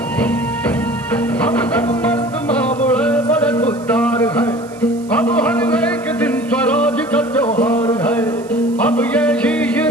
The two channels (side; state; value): right; noise; hiss, 24 dB below the sound